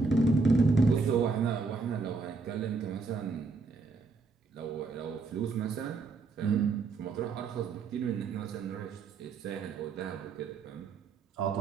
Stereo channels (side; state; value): left; quieter; 4.2 dB